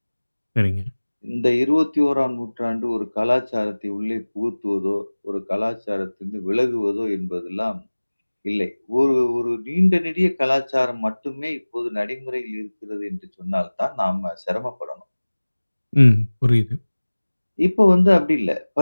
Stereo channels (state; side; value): inverted; both; correlation -1.00